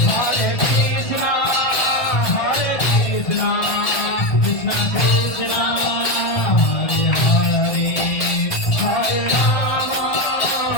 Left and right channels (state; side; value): late; right; 1.6 ms